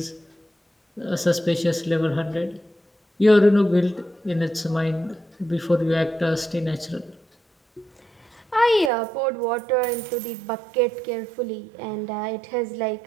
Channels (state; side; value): drops out; left; at 8.9 s